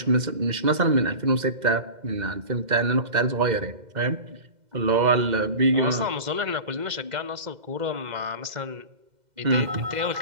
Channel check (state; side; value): late; left; 2.0 ms